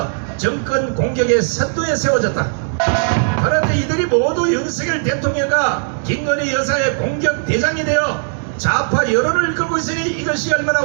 정권 공격의 선두에 세워졌다. 그런데 이들이 모두 윤석열 대통령과 김건희 여사의 공격 대장이 되어 좌파 여론을 이끌고 있으니 이것이 얼마나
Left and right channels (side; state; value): left; silent; digital silence